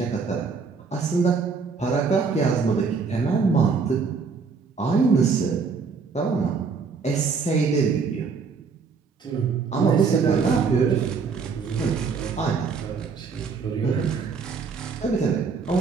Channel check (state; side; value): quieter; left; 5.2 dB